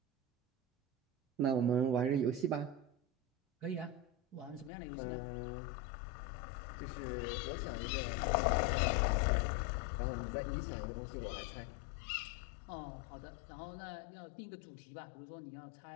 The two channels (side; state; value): right; drops out; at 4.7 s